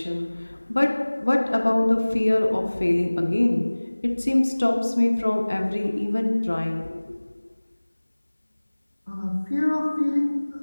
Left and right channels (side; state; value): both; inverted; correlation -1.00